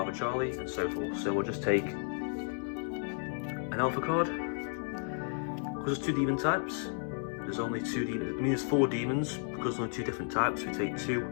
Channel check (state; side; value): silent; right; 56 dB below the other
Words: Charlie, and so forth. So we'll just take an Alpha card. Because there's 2 demon types, there's only 2 demons, I mean there's 4 demons, because there's only 2 different types, we take 2